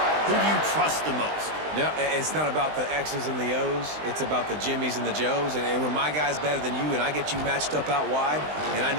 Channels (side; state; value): left; late; 20 ms